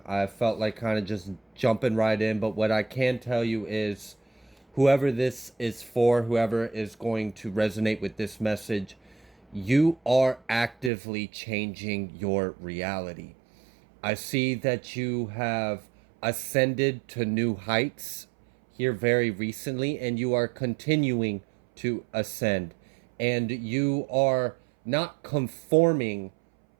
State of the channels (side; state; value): left; drops out; at 10.9 s